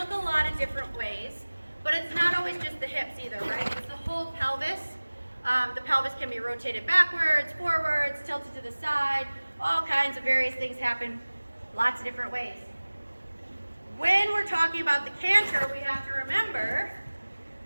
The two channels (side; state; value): both; inverted; correlation -1.00